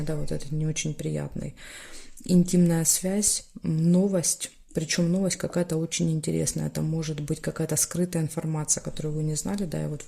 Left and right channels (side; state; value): both; identical; correlation 1.00